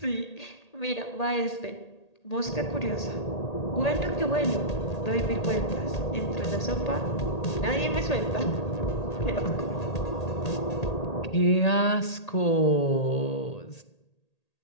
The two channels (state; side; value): late; right; 1.8 ms